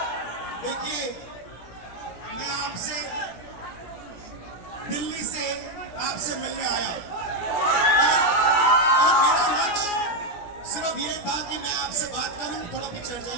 देखिए, मैं आपसे दिल्ली से आपसे मिलने आया और मेरा लक्ष्य सिर्फ ये था कि मैं आपसे बात करूं, थोड़ा पीछे हट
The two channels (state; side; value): late; right; 17 ms